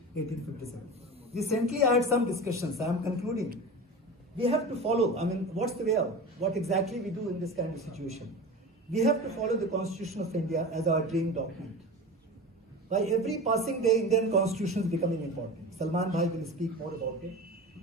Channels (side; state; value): both; normal; correlation 0.31